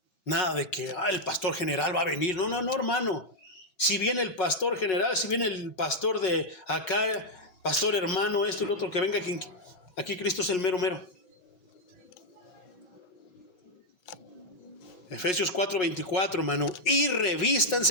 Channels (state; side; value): late; right; 5.4 ms